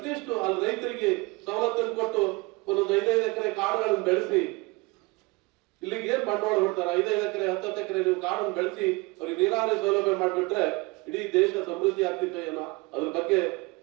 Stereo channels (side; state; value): left; quieter; 25.2 dB